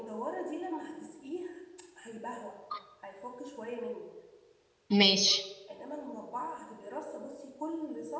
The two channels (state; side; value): identical; both; correlation 1.00